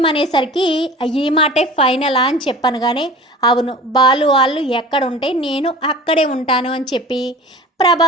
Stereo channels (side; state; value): both; normal; correlation 0.41